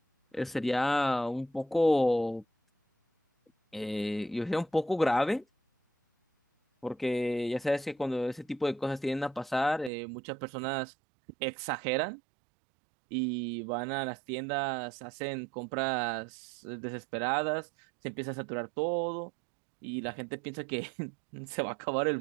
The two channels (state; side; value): drops out; left; at 9.9 s